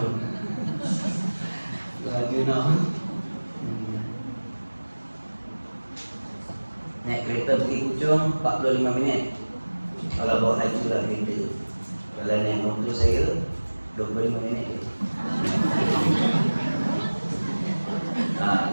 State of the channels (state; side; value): inverted; both; correlation -1.00